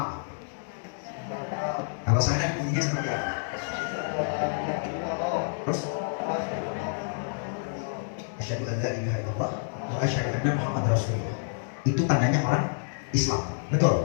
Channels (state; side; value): silent; right; digital silence